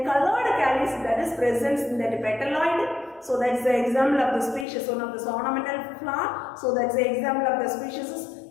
colored calyx that is present in that petaloid. So that's the example of the species, one of the ornamental flower. So that's the example of the species is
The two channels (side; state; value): right; drops out; at 4.7 s